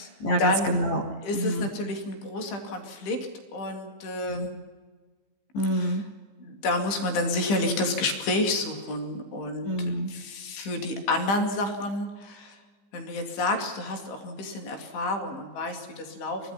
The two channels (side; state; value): right; late; 15 ms